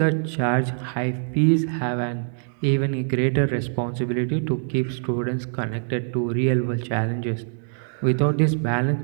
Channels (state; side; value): silent; left; digital silence